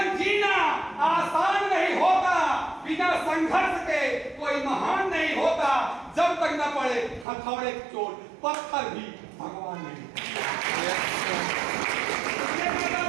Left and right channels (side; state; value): left; drops out; at 7.2 s